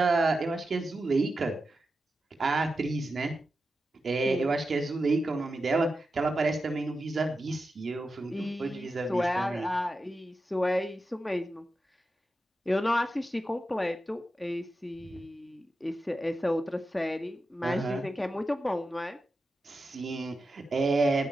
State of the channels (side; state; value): both; normal; correlation 0.90